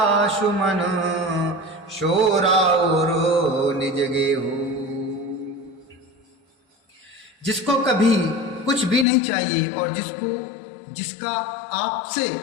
सुमन, शोराउर निज गेहु। जिसको कभी कुछ भी नहीं चाहिए और जिसका आपसे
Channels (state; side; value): drops out; right; at 9.1 s